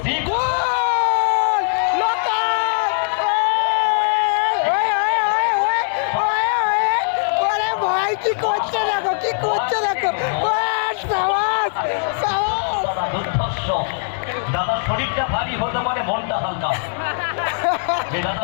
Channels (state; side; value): silent; right; 66 dB below the other